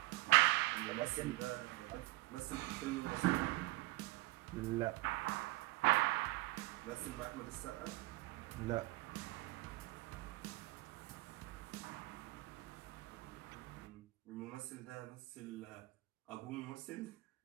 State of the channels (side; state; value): left; quieter; 21.4 dB